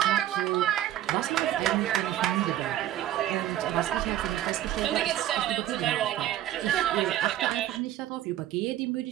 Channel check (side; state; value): left; quieter; 12.7 dB